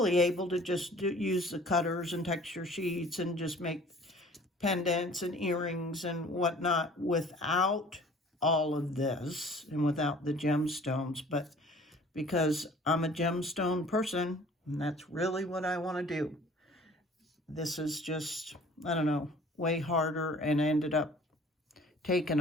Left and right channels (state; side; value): normal; both; correlation 0.50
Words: able to just use the cutters and texture sheets and just make pendants and earrings and whatnot without all of this and without the gemstones. But because I'm a gemstone person, and that's really what I want to do, this is just, I don't know, way harder, and ended up taking